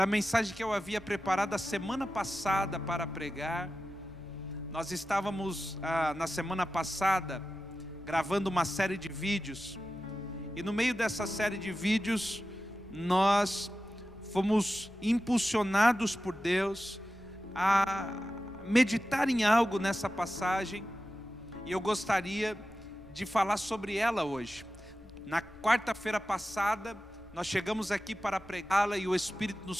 a mensagem que eu havia preparado a semana passada para pregar. Nós estávamos na semana passada gravando uma série de vídeos, e no meio dessa série de vídeos nós fomos impulsionados por Deus a meditar em algo nessa passagem, e eu gostaria de falar sobre ela hoje. Na quarta-feira passada nós chegamos aqui para pregá-la e o Espírito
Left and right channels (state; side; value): noise; left; rumble, 23 dB below the sound